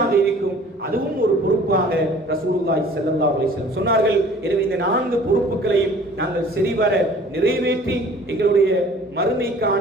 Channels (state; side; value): normal; both; correlation 0.49